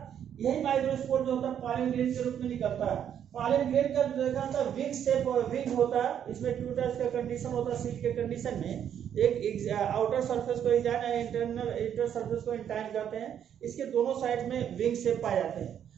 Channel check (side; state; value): left; quieter; 9.2 dB